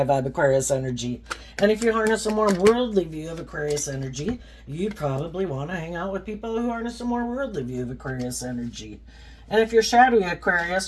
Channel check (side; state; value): both; identical; correlation 1.00